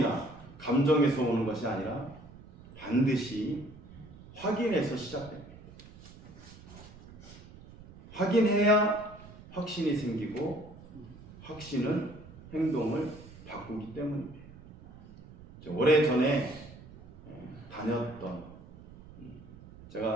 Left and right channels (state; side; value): noise; right; rumble, 19 dB below the sound